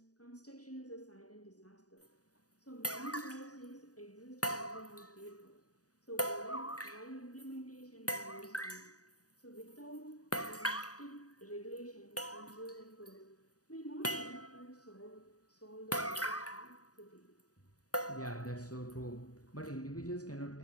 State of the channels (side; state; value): right; late; 0.67 ms